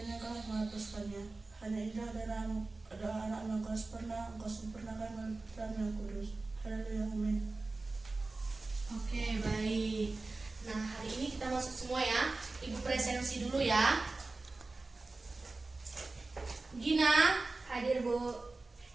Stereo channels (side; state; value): left; quieter; 3.4 dB